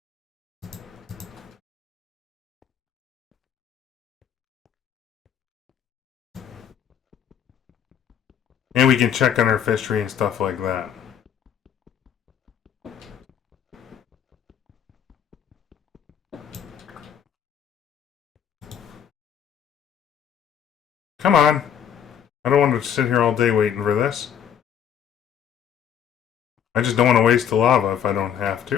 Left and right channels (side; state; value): right; quieter; 8.8 dB